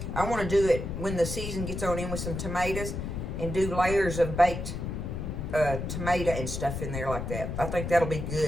I want to do it when the season gets on in with some tomatoes and do layers of baked tomato and stuff in there like that. I think that'll be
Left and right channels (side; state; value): left; noise; rumble, 5 dB below the sound